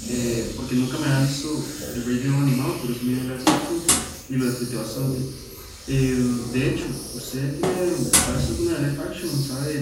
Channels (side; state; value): both; identical; correlation 1.00